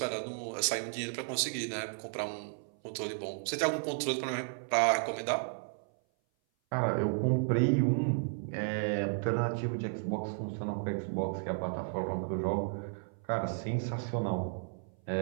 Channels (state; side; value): silent; left; 55 dB below the other